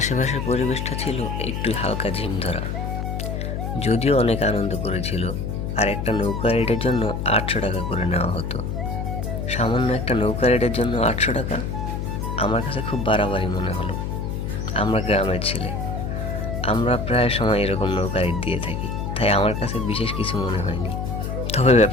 পরিবেশটা ছিল একটু হালকা ঝিমধরা, যদিও অনেক আনন্দ করেছিল। আর একটা নৌকা রাইডের জন্য 800 টাকা করে নেওয়া হতো। সামান্য একটা নৌকা রাইডের জন্য 800 টাকা আমার কাছে খুব বাড়াবাড়ি মনে হলো। আমরা গ্রামের ছেলে, আমরা প্রায় সময় এরকম নৌকা রাইড দিয়ে থাকি, তাই আমার কাছে বিশেষ কিছু মনে হয়নি। তবে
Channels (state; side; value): noise; left; hum, 3 dB below the sound